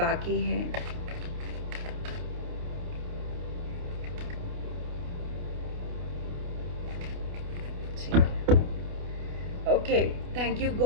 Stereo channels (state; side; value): late; left; 28 ms